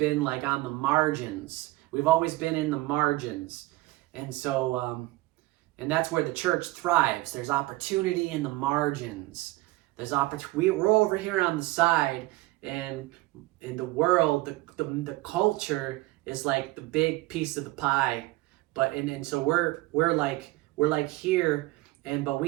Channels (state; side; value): quieter; left; 19.6 dB